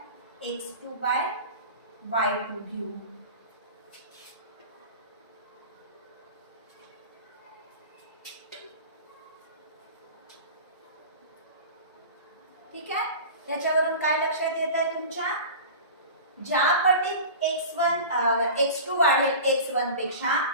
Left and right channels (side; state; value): both; inverted; correlation -0.34